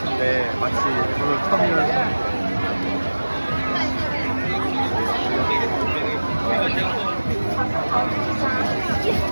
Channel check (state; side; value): inverted; both; correlation -1.00